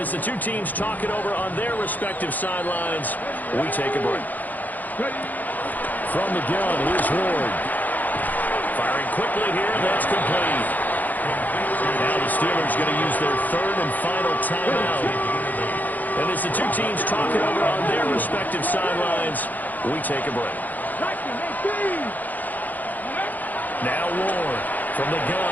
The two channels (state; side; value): late; right; 0.083 ms